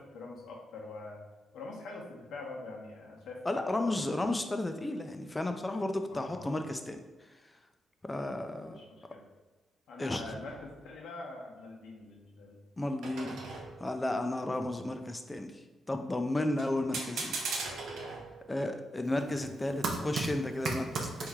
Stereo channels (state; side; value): normal; both; correlation 0.88